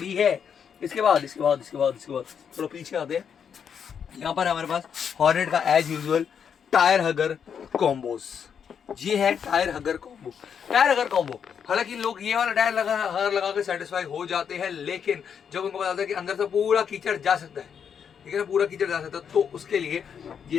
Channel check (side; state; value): right; quieter; 7.5 dB